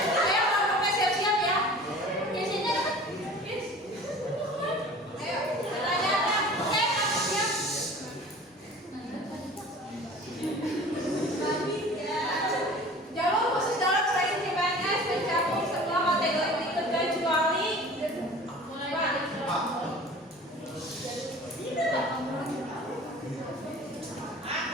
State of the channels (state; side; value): normal; both; correlation 0.43